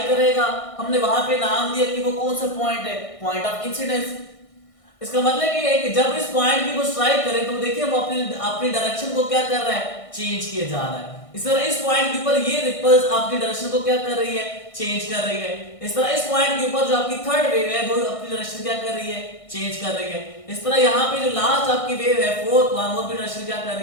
करेगा, हमने वहां पे नाम दिया कि वो कौन सा पॉइंट है, पॉइंट ऑफ इंसिडेंस। इसका मतलब ये है कि जब इस पॉइंट की वो स्ट्राइक करे तो देखिए वो अपनी डायरेक्शन को क्या कर रहा है, चेंज किया जा रहा है। इस तरह इस पॉइंट के ऊपर ये रिपल्स आपकी डायरेक्शन को क्या कर रही है, चेंज कर रही है। इस तरह इस पॉइंट के ऊपर जो आपकी थर्ड वेव है वो अपनी डायरेक्शन क्या कर रही है, चेंज कर रही है। इस तरह यहाँ पे जो लास्ट आपकी वेव है फोर्थ वन, वो भी डायरेक्शन क्या कर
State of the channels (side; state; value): right; late; 1.6 ms